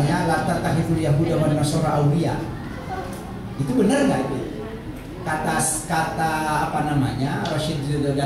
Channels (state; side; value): identical; both; correlation 1.00